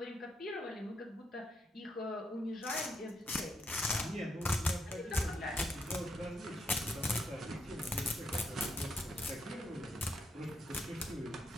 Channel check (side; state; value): both; normal; correlation 0.78